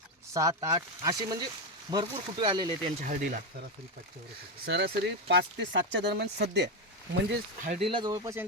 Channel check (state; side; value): normal; both; correlation 0.09